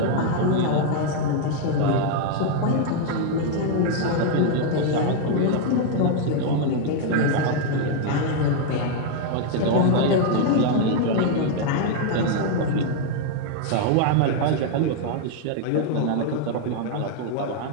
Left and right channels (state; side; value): different; both; correlation 0.00